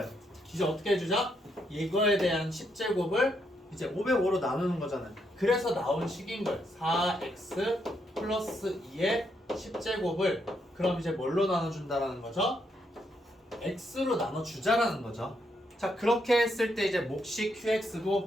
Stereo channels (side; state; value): both; normal; correlation 0.77